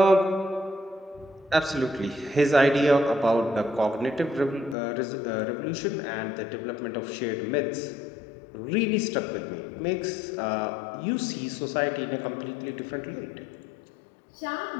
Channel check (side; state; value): right; drops out; at 4.8 s